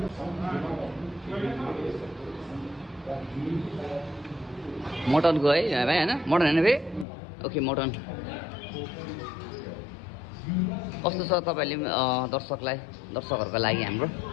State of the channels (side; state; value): right; drops out; at 7.1 s